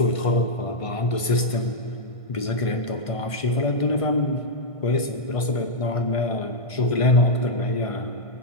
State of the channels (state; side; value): late; right; 1.5 ms